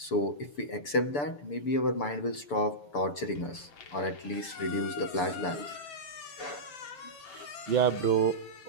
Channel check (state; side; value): late; right; 6.9 ms